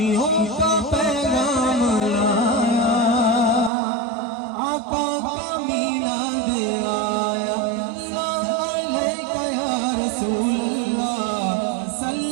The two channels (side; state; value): left; drops out; at 3.7 s